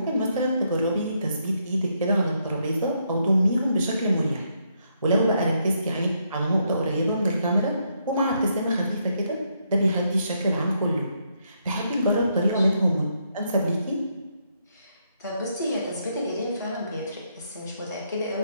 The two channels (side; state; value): both; inverted; correlation -0.76